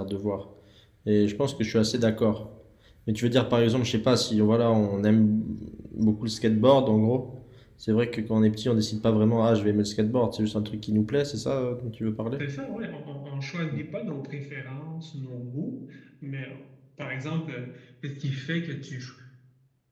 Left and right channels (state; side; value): identical; both; correlation 1.00